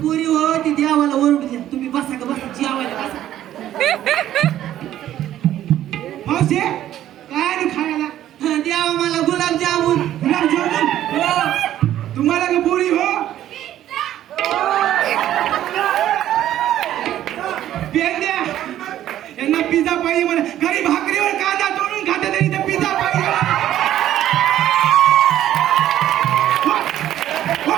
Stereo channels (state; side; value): quieter; left; 12.3 dB